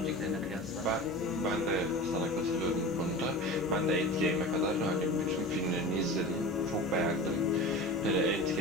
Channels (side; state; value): both; normal; correlation 0.32